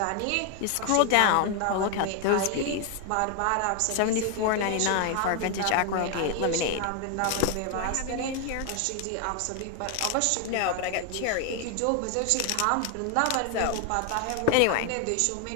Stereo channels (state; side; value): different; both; correlation 0.01